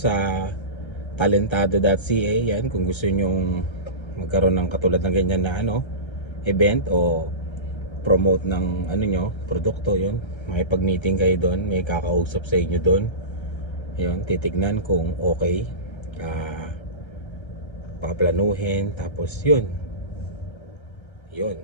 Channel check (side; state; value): right; late; 1.3 ms